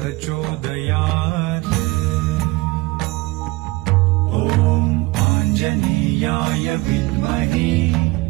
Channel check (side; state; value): left; quieter; 21.5 dB